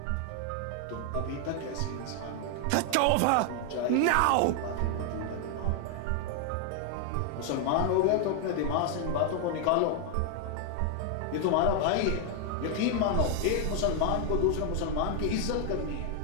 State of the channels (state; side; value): different; both; correlation 0.00